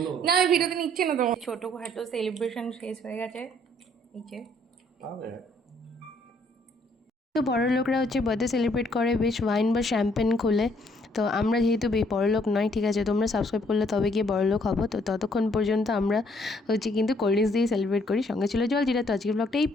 না আমি ভিডিওতে নিচ্ছি না। তোমার ছোটখাটো সেলিব্রেশন শেষ হয়ে গেছে, এই যে তো বড় লোকরা হচ্ছে বার্থডে সেলিব্রেট করে বেশ ওয়াইন বা শ্যাম্পেন খোলে। তো আমরা যেহেতু বড়লোক নয়, ঠিক আছে, তোমরা সাবস্ক্রাইব করলে তবে গিয়ে বড়লোক হবো। তো ততক্ষণ পর্যন্ত আমরা হচ্ছে কিন্তু কোল্ড ড্রিঙ্কস দিয়ে সেলিব্রেট করি। সঙ্গে ছিল জলজিরা। তো আজকের ব্লগটা এই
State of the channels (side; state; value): both; normal; correlation 0.66